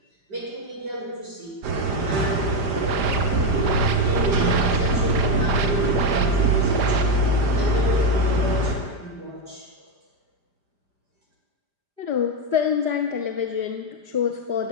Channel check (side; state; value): left; late; 5.0 ms